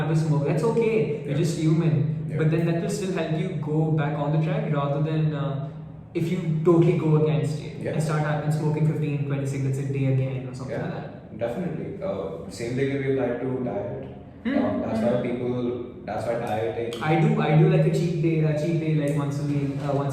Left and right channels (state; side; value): identical; both; correlation 1.00